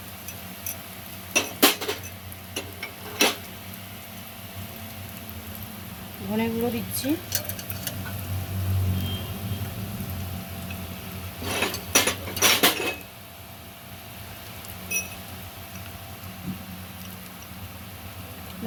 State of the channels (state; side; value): identical; both; correlation 1.00